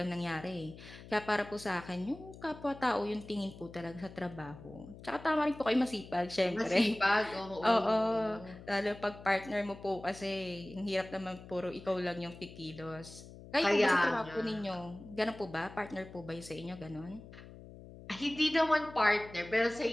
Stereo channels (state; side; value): noise; left; hum, 16 dB below the sound